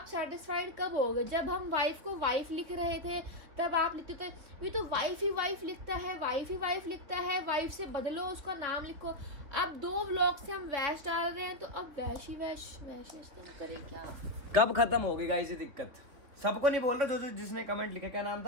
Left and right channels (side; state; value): left; late; 3.7 ms